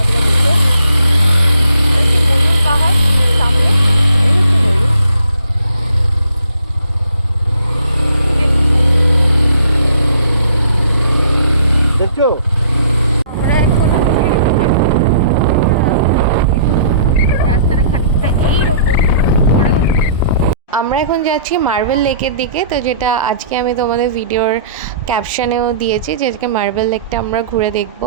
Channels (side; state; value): both; inverted; correlation -0.59